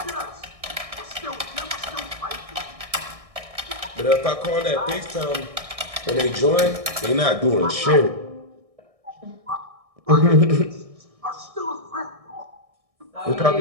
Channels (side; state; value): left; late; 1.6 ms